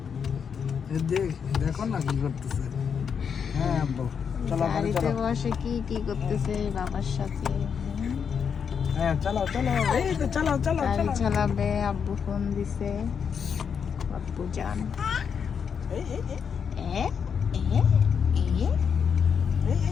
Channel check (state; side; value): quieter; right; 6.9 dB